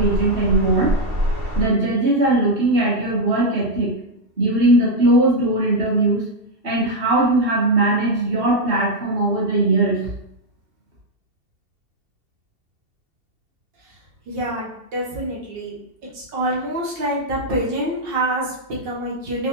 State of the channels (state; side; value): late; left; 2.7 ms